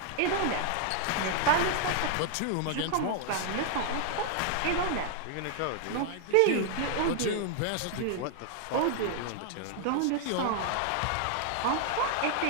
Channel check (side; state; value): both; different; correlation 0.00